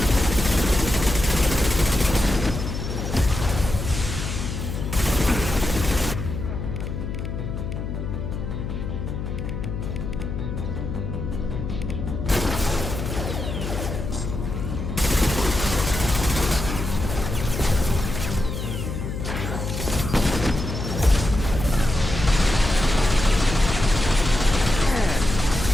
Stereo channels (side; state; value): left; noise; hum, 5 dB below the sound